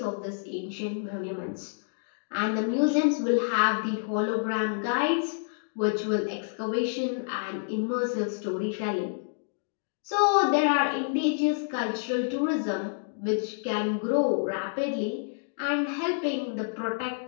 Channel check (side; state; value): right; silent; digital silence